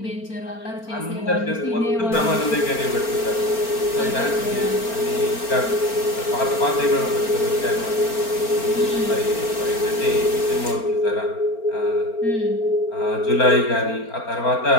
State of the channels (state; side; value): late; right; 4.4 ms